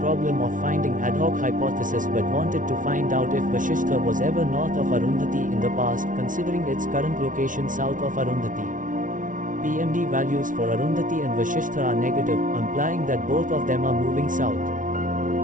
problem of finding ad hoc hypothesis, but wanted to find out if Vasishtha was ever north of Arundhati in the past, considering its current location south of Arundhati. PMD values for Arundhati and Vasishtha are negative, implying that both of them are moving south.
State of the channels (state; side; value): late; left; 0.38 ms